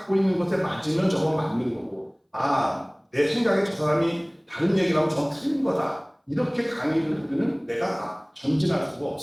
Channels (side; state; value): both; identical; correlation 1.00